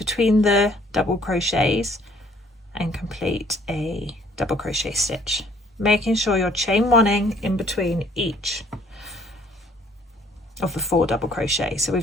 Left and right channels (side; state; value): both; normal; correlation 0.60